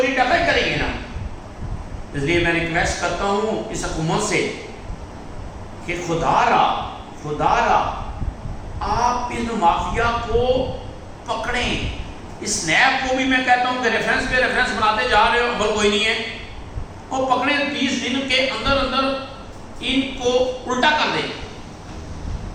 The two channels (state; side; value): identical; both; correlation 1.00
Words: ڈکائی کریں گے نا۔ اس لیے میں ریکویسٹ کرتا ہوں اس حکومت سے کہ خدا را آپ ان مافیا کو پکڑیں۔ اس نیب کو بھی میں کہتا ہوں کہ ریفرنس پہ ریفرنس بناتے جا رہے ہو، عمل کوئی نہیں ہے، اور پکڑیں 20 دن کے اندر ان کو الٹا کر دیں۔